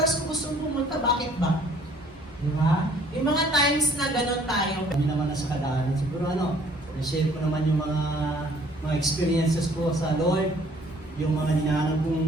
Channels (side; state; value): both; normal; correlation 0.58